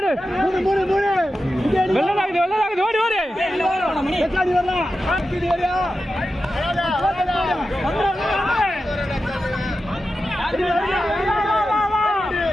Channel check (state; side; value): normal; both; correlation 0.91